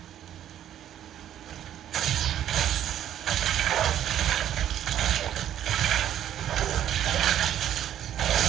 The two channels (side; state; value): left; quieter; 11.0 dB